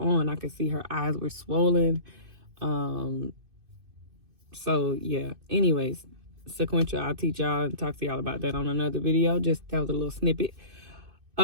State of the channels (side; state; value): left; late; 2.6 ms